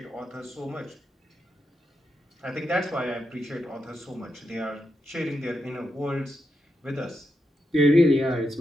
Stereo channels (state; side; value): normal; both; correlation 0.85